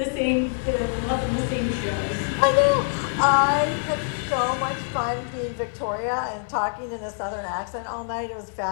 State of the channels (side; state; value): right; silent; 60 dB below the other